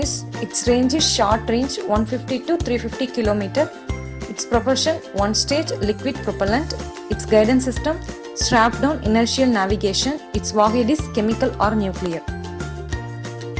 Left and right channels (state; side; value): identical; both; correlation 1.00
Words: Its range is short range 150 to 350 km. Its propulsion one-stage liquid propellant. Its guidance system strap down inertial navigation. Its warhead is chemical or nuclear.